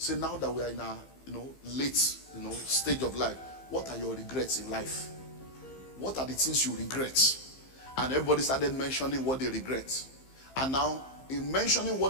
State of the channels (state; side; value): late; right; 15 ms